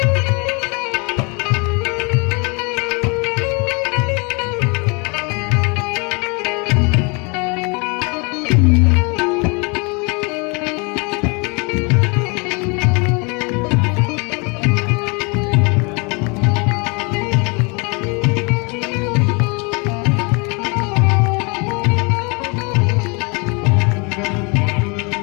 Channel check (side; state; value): right; quieter; 31.2 dB